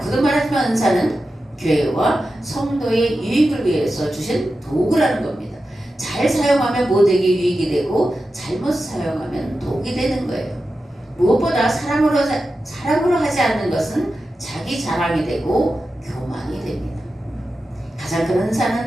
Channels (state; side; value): normal; both; correlation 0.91